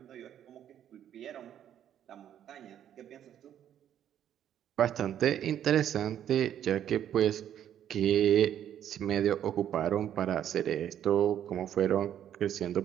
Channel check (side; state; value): left; quieter; 10.3 dB